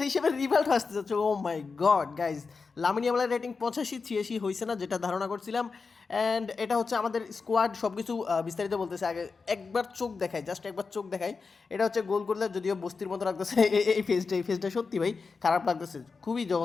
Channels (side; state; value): right; quieter; 4.7 dB